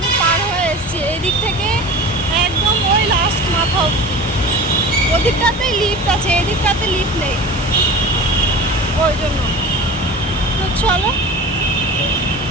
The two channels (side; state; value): both; normal; correlation 0.35